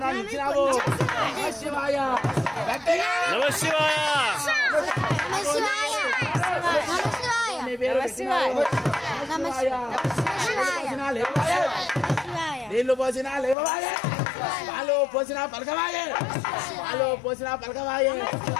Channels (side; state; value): right; drops out; at 13.6 s